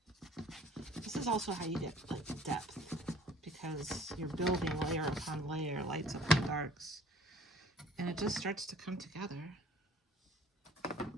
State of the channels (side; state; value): both; normal; correlation 0.53